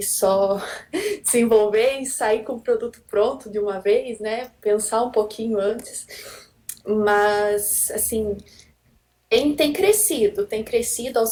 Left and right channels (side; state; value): both; identical; correlation 1.00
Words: só desenvolver e sair com o produto pronto de uma vez, né? Pensar um pouquinho antes. Mas, assim, tem crescido